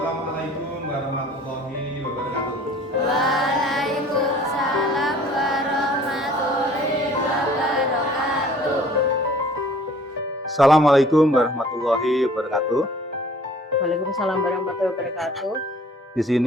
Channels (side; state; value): both; normal; correlation 0.52